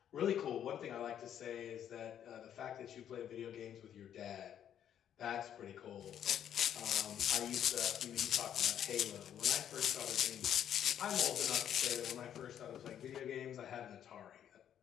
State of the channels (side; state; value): right; quieter; 9.8 dB